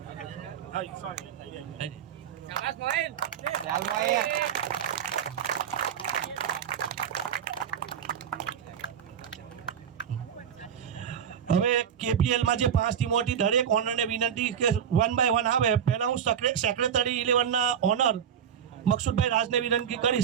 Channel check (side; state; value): left; quieter; 8.4 dB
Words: હવે KPL માં જે 5 ટીમો હતી દરેક ઓનરને વિનંતી કે 1 બાય 1 આવે. પહેલા હું સેક્રેટરી 11 ના ઓનર મકસુદભાઈ રાજને વિનંતી